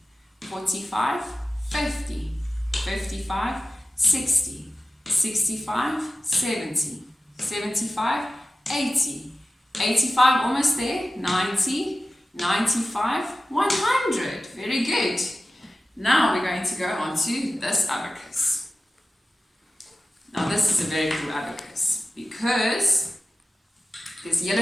45, 50, 55, 60, 65, 70, 75, 80, 85, almost there, 90, 95, 100. Very good. Now we're going to go on to this abacus. Now this is a very cool abacus because there's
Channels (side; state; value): both; normal; correlation 0.95